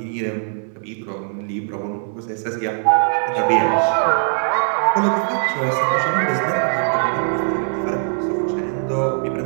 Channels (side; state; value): left; silent; 59 dB below the other